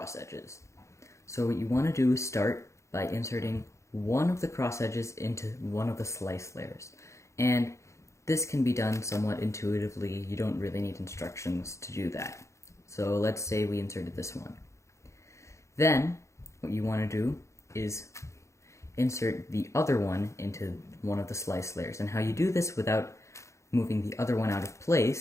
edges. So what you want to do is start by inserting one of the cross edges into one of the slice layers. And this can be done somewhat intuitively. You don't really need instructions to do that. So let's say we inserted this one. Then what you want to do is insert the other one into one of the slice layers. And how you do this without moving the other one out of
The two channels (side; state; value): right; late; 0.14 ms